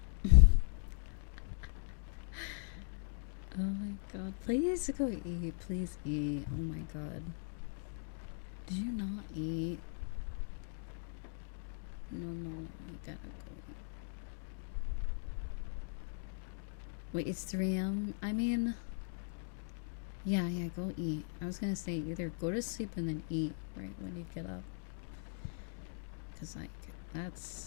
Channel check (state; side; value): silent; right; digital silence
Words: Oh my god. Please go eat. Please eat. Oh my god. Did you not eat? No, no, no. You gotta go eat. Wait, it's 3 a.m.? I mean... Yeah, go eat. I was gonna say either go to sleep and then eat right when you get up. Cause like,